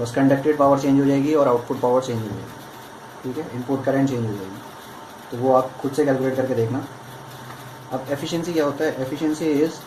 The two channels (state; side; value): identical; both; correlation 1.00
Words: बस कंडक्टेड पावर चेंज हो जाएगी और आउटपुट पावर चेंज हो जाएगी, ठीक है, इनपुट करंट चेंज हो जाएगी। तो वो आप खुद से कैलकुलेट करके देखना। अब एफिशिएंसी क्या होता है, efficiency is